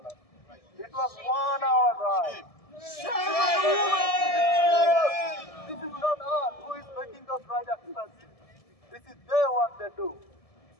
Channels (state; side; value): late; right; 1.7 ms